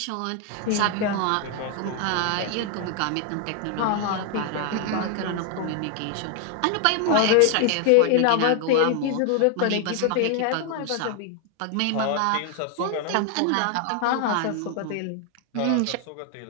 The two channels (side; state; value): both; different; correlation 0.00